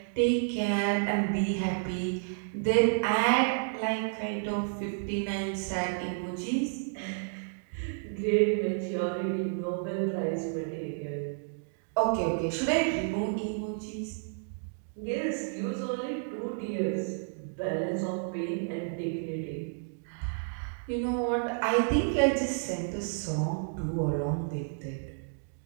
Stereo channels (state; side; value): silent; left; digital silence